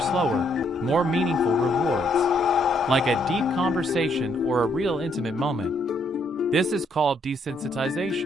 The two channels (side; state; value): both; normal; correlation 0.71